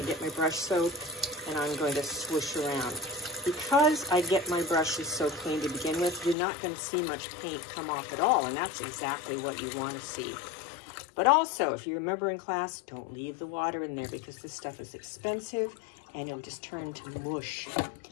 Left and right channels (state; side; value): drops out; right; at 6.4 s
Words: get my brush soap and I'm going to swoosh around. Because I get my brushes so clean to begin with, you're not going to see much paint come off at all, and that's exactly what you want to see. But also, if you remember in class, don't leave the water in there because this stuff is expensive and it'll just turn to mush,